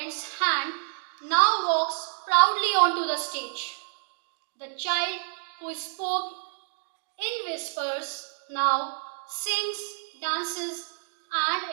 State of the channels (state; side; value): silent; left; 59 dB below the other